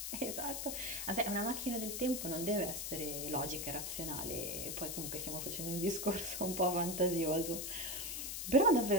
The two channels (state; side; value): noise; left; hiss, 4 dB below the sound